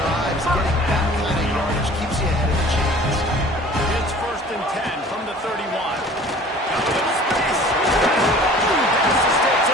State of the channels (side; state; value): both; normal; correlation 0.47